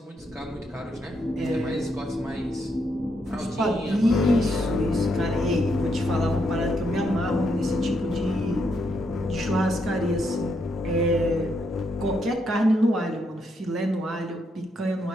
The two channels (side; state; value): both; normal; correlation 0.78